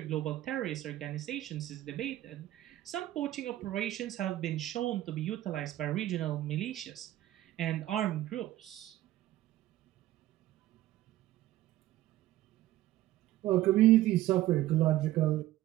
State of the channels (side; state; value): left; quieter; 14.7 dB